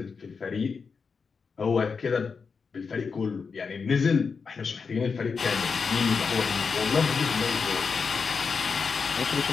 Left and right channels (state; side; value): quieter; right; 5.3 dB